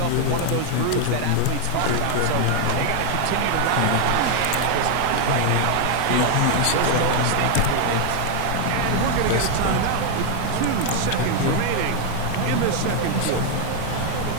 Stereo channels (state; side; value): different; both; correlation 0.00